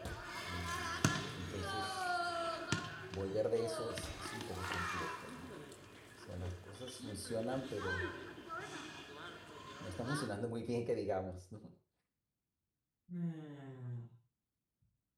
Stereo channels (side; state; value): both; identical; correlation 1.00